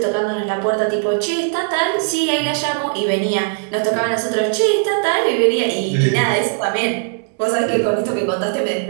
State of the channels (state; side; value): silent; left; 67 dB below the other